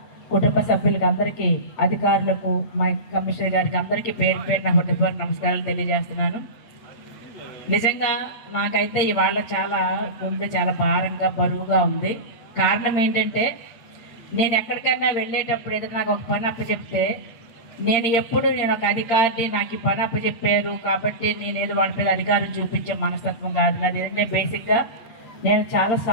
కుటుంబ సభ్యులకు అందరికీ, అధికారులకు, మా కమిషనర్ గారికి అందరికీ పేరు నా హృదయపూర్వక నమస్కారాలు తెలియజేస్తున్నాను. నిజంగా నాకైతే ఇవాళ గుండె చాలా భారంగా బరువుగా ఉంది. కారణం ఏంటంటే నేను ఎక్కడికైనా వెళ్ళేటప్పుడు ఏదైనా నాకు ఒక పని అప్పచెప్తే నేను ఒక అధికారిని, నాకు ఈ పని అప్పచెప్పారు కాబట్టి నేను ఏదో వాళ్ళ మీద అధికారం చూపించే మనస్తత్వం కాదు నాది. ఏదంటే బేసిక్గా నేను చాలా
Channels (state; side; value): late; right; 8.7 ms